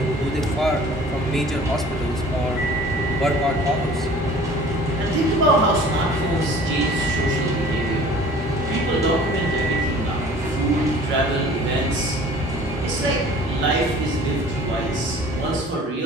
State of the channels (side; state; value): both; normal; correlation 0.48